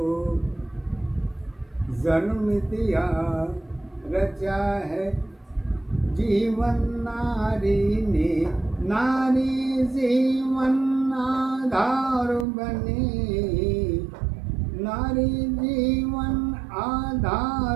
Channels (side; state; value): left; drops out; at 12.5 s